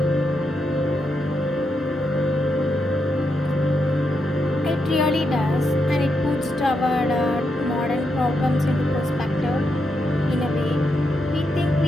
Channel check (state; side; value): normal; both; correlation 0.83